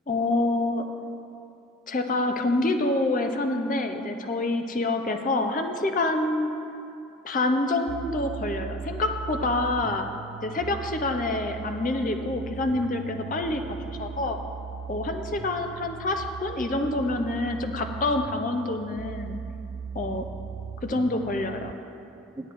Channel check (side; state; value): both; normal; correlation 0.38